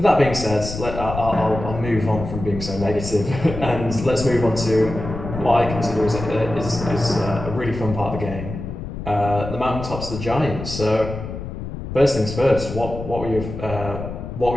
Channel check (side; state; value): left; noise; rumble, 8 dB below the sound